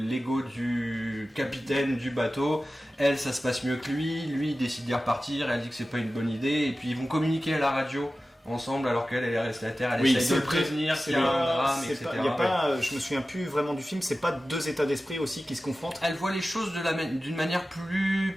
du capitaine du bateau. Elle, ça se passe mieux que lui. Lui, il décide d'y repartir. Elle dit que c'est pas une bonne idée. Et puis, ils vont communiquer à la radio ensemble alors qu'elle est restée à terre, elle essaye de le prévenir qu'il y a un drame, etc. Y a pas, je me souviens plus vraiment du film, c'est pas deux états d'esprit aussi qui se confrontent. Elle voit les choses d'une manière plus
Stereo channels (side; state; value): both; normal; correlation 0.95